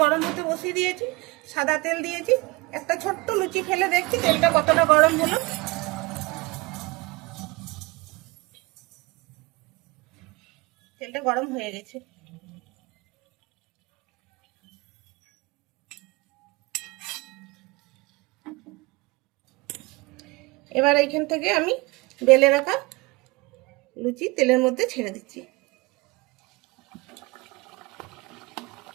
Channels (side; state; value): left; quieter; 24.3 dB